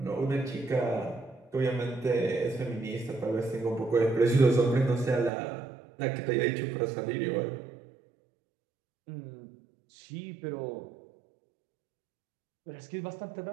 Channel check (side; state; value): left; drops out; at 5.3 s